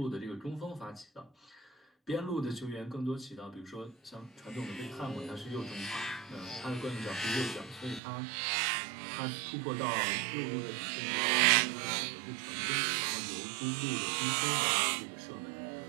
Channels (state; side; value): drops out; left; at 8.0 s